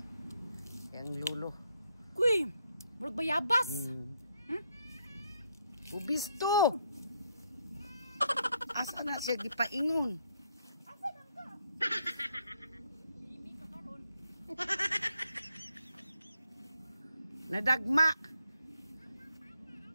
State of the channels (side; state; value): both; inverted; correlation -0.75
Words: Yang lulo. Kuy, murag bayabas. Ubis to. Asa na siya gipaingon? Asa man ka? Limi ka karon. Nadagma